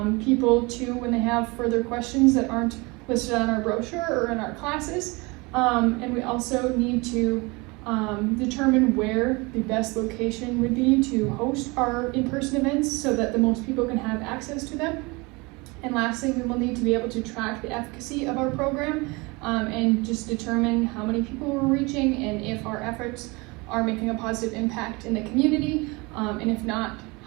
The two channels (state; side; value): quieter; left; 26.1 dB